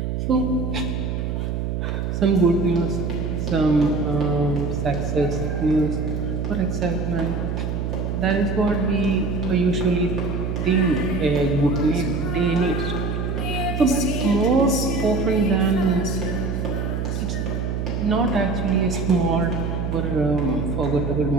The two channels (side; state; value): right; noise; hum, 2 dB below the sound